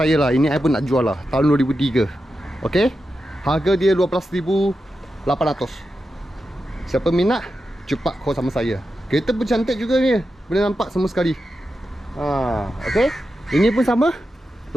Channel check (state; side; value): normal; both; correlation 0.89